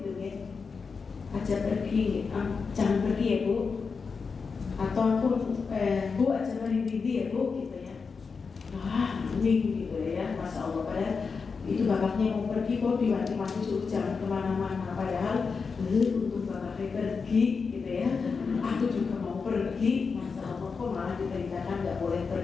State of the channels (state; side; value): quieter; right; 5.1 dB